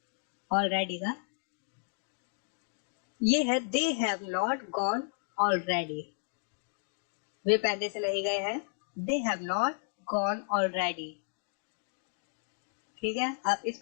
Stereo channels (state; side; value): silent; right; digital silence